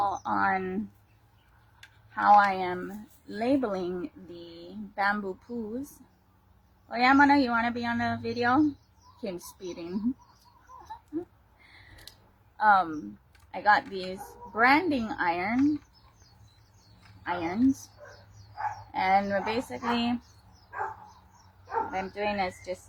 on how I am labeling the bamboo poos. Oh yeah, Mana, you want to be on the video? Came speeding. I got these branding irons, and basically what I'm doing is just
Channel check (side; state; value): both; identical; correlation 1.00